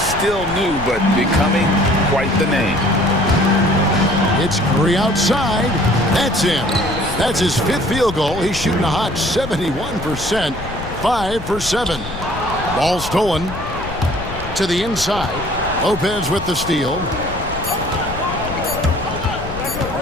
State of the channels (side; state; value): left; noise; rumble, 11 dB below the sound